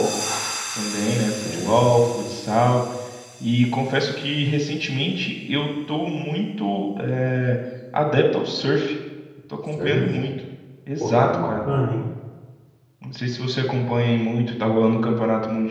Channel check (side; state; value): both; identical; correlation 1.00